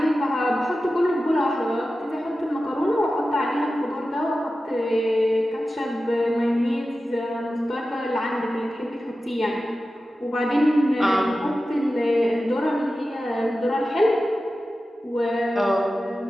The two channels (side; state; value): both; normal; correlation 0.94